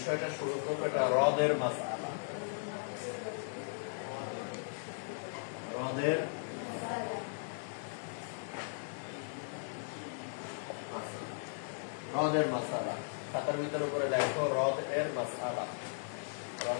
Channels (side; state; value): right; silent; digital silence